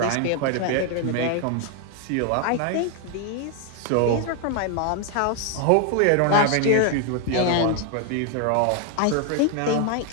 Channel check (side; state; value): both; different; correlation 0.01